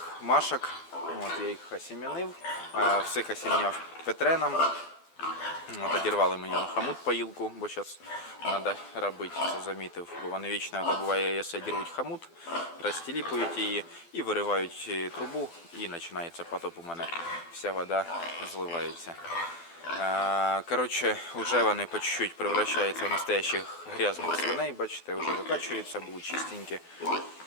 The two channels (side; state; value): right; late; 12 ms